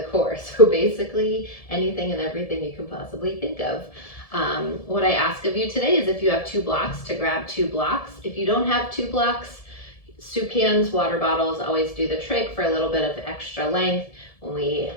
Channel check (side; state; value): right; late; 1.7 ms